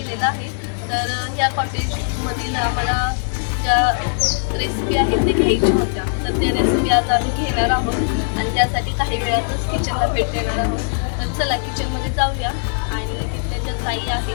आहे. तर ह्या कॉटेजमधील आम्हाला ज्या रेसिपी आहेत ते घ्यायच्या होत्या, तर त्या रेसिपी आज आम्ही घेणार आहोत आणि त्यासाठी काही वेळातच किचनला भेट देणार आहोत. तर चला किचनमध्ये जाऊया आणि तिथल्या ज्या ताई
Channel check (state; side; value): silent; right; digital silence